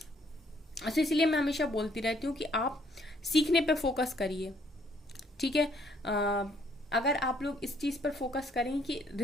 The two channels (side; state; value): both; normal; correlation 0.66